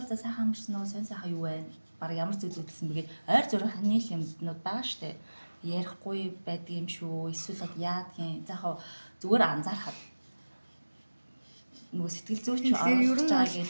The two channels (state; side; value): inverted; both; correlation -1.00